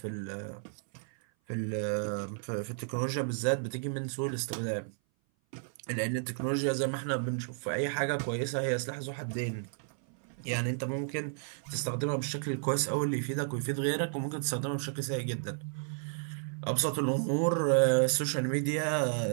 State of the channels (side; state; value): left; silent; 56 dB below the other